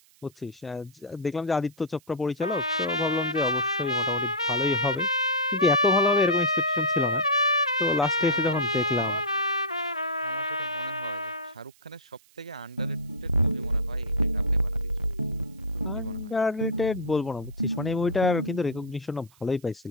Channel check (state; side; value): noise; right; hiss, 30 dB below the sound